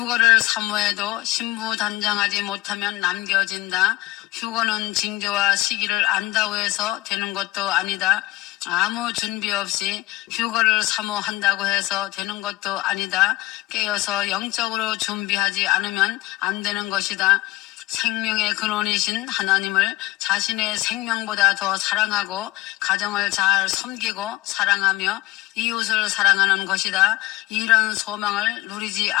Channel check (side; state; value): right; quieter; 18.6 dB